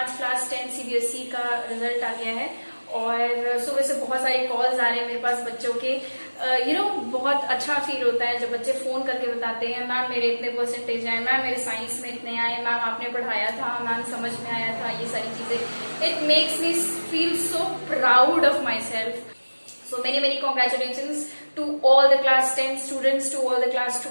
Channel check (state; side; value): inverted; both; correlation -1.00